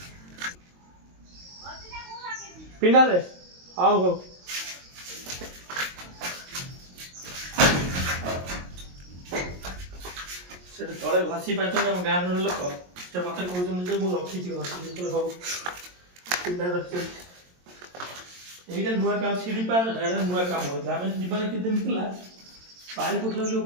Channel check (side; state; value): left; late; 22 ms